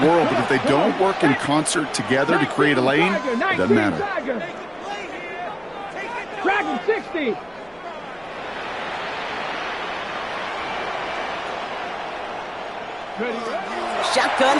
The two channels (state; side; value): noise; left; rumble, 29 dB below the sound